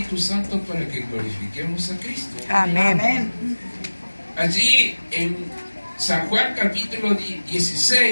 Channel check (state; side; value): inverted; both; correlation -1.00